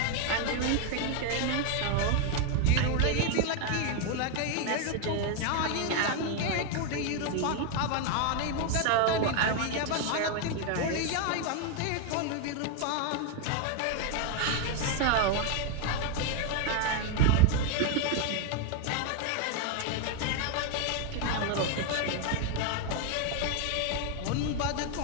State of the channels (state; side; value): different; both; correlation 0.01